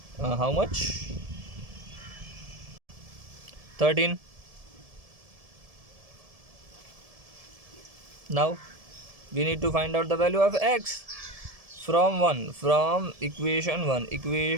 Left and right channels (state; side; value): late; left; 1.7 ms